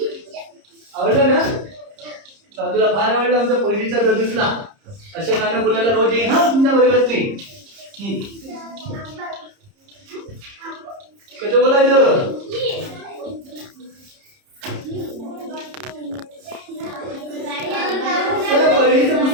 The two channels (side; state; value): left; late; 30 ms